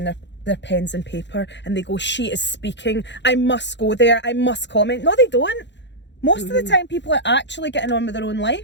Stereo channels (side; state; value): right; late; 0.52 ms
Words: their pens and paper and they go, she is speaking, I must go there, I must comment. No, they don't. Most of the time people are actually getting on with their own